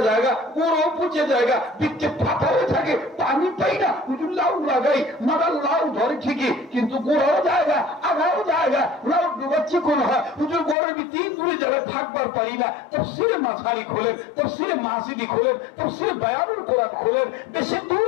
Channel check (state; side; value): drops out; right; at 10.8 s